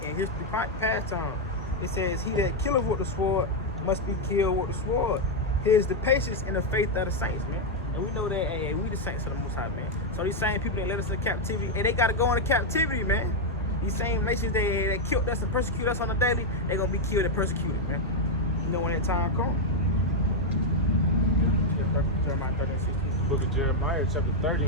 history past time. It says, he that killeth with the sword must be killed with the sword. Here's the patience and the faith of the saints, man. And we know that, we the saints of the Most High, man. So these same people that led us into captivity, and they got to go into captivity, man. These same nations that killed us and persecute us on a daily, they're going to be killed and persecuted, man. You know when that time comes. Jeremiah 13:16. Book of Jeremiah, chapter 30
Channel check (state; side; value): normal; both; correlation 0.01